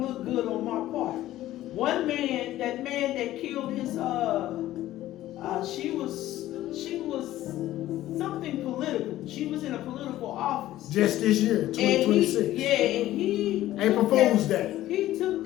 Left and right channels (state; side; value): quieter; right; 14.5 dB